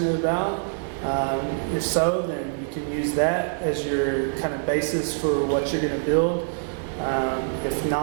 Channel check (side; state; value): left; silent; digital silence